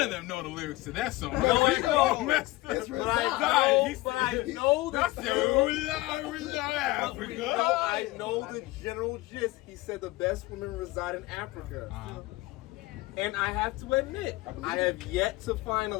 of them know the lyrics to that song. No, they don't. Messed up. It's But I real. know That's the the general. Africa. I know the general gist. He said the best women reside in Africa. And I have to admit, I have yet to find a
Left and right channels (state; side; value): quieter; right; 19.5 dB